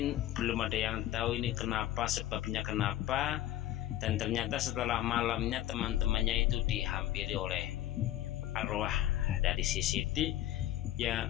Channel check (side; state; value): right; quieter; 13.4 dB